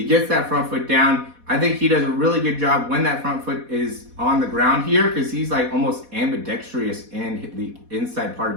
gets that front foot down. I think he does a really good job when that front foot is on the ground here, because he's like almost ambidextrous in the inside part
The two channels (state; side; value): late; left; 4.1 ms